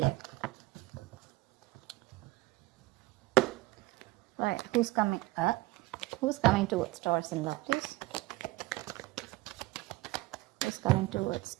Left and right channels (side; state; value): left; quieter; 20.3 dB